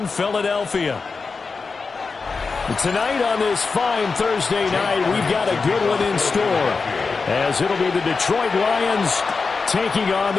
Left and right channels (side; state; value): right; quieter; 4.6 dB